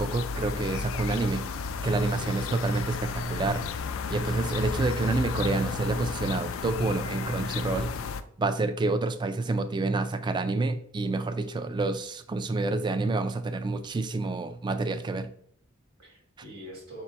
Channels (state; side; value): normal; both; correlation 0.66